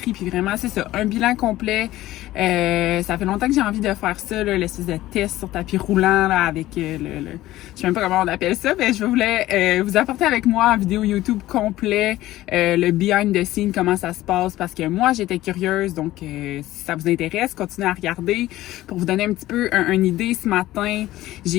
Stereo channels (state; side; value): quieter; right; 15.8 dB